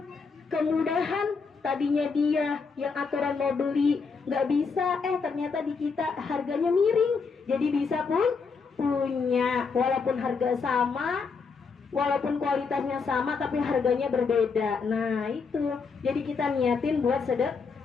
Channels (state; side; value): quieter; right; 5.1 dB